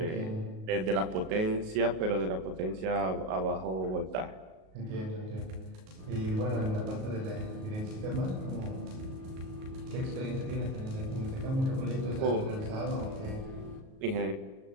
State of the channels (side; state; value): left; late; 38 ms